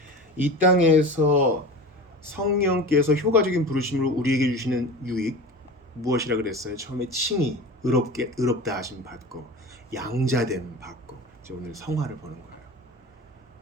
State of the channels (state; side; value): normal; both; correlation 0.32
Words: 이 땅에서 성령께서 효과적인 부르심으로 우리에게 주시는 유익 무엇이라 그랬어요? 처음에 칭의, 의롭다 하심 받고 양자됨 받고 이제 오늘 성화를 보는 거예요.